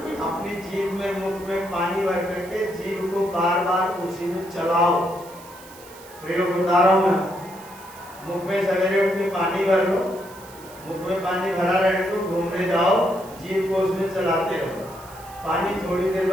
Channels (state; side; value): noise; right; hiss, 20 dB below the sound